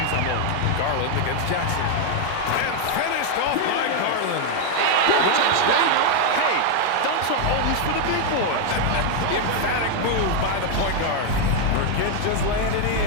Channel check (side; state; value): both; different; correlation 0.01